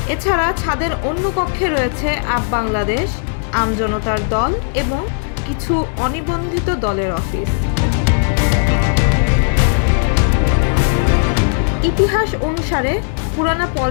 এছাড়া ছাদের অন্য কক্ষে রয়েছে আপ বাংলাদেশ, আমজনতার দল এবং কিছু অনিবন্ধিত দলের অফিস। ইতিহাস অনুসারে পুরানা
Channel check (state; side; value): silent; right; 69 dB below the other